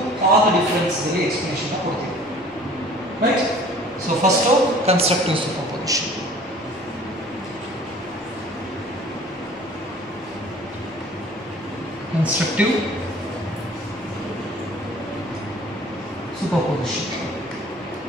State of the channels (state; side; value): normal; both; correlation 0.49